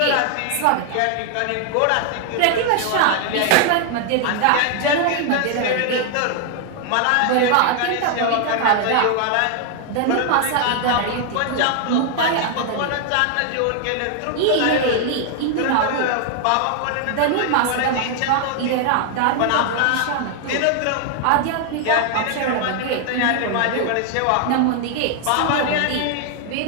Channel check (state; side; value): different; both; correlation 0.00